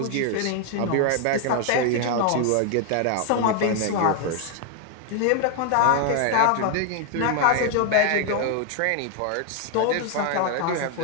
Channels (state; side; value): different; both; correlation 0.00